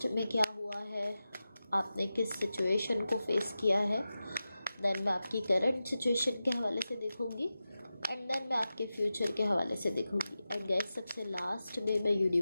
में क्या हुआ है, आपने किस सिचुएशन को फेस किया है। देन मैं आपकी करंट सिचुएशन के हवाले से देखूंगी एंड देन मैं आपके फ्यूचर के हवाले से देखूंगी। एंड गाइस सबसे लास्ट में मैं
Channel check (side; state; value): both; inverted; correlation -0.93